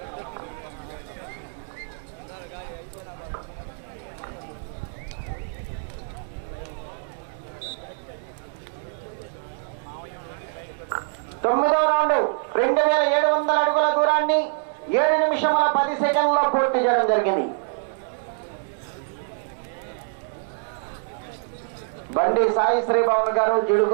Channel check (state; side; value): silent; left; digital silence